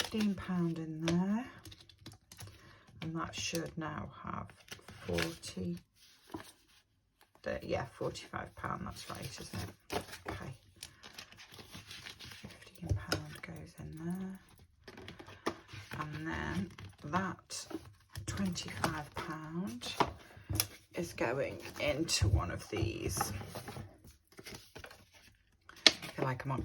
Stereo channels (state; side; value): identical; both; correlation 1.00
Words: in there. And that should now have 40. Yeah, £45, that's right, isn't it? Okay. £15 goes in there. And then that £25 is going into one of these. I feel like I'm on